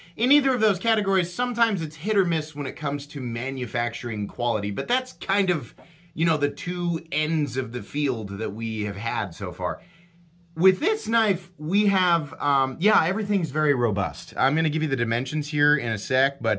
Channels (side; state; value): both; identical; correlation 1.00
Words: In either of those categories, sometimes it's hit or miss when it comes to manufacturing quality, but that's kind of, you know, the two ends of the field that we have had so far. With this knife, we have, yeah, everything's very robust. I'm going to give you the dimensions here in a sec,